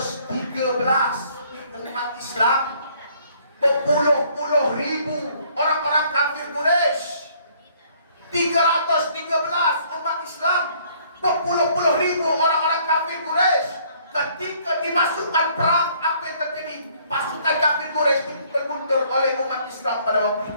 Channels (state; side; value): inverted; both; correlation -0.61